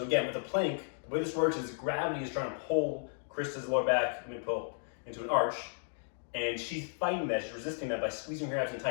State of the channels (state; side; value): silent; right; digital silence